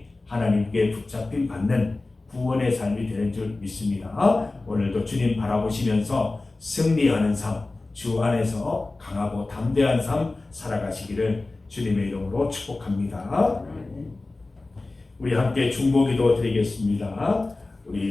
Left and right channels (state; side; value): quieter; right; 3.2 dB